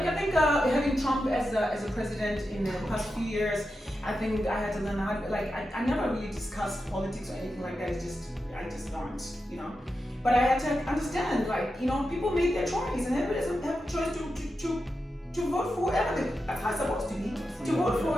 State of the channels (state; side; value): normal; both; correlation 0.89